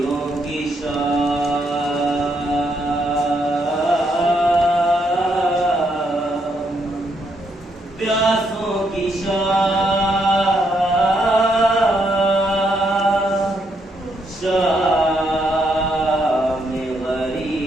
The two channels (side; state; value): both; normal; correlation 0.76